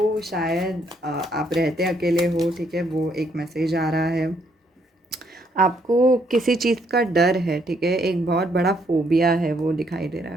शायद आप रहते अकेले हो, ठीक है। वो एक मैसेज आ रहा है। आपको किसी चीज़ का डर है, ठीक है। एक बहुत बड़ा फोबिया है वो दिखाई दे रहा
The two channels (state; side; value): normal; both; correlation 0.71